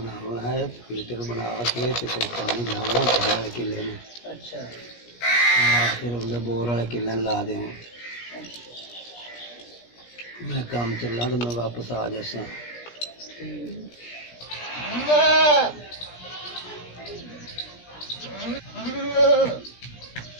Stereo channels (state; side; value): late; right; 17 ms